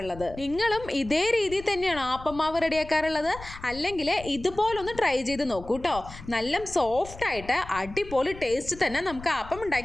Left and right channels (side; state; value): left; noise; rumble, 15 dB below the sound